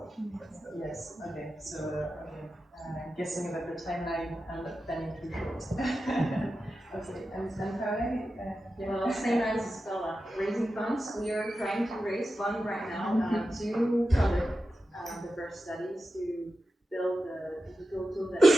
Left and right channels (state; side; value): normal; both; correlation 0.92